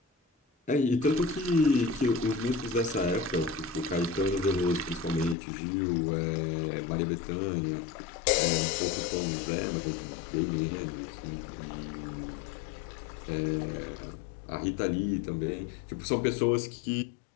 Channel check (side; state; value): right; drops out; at 5.4 s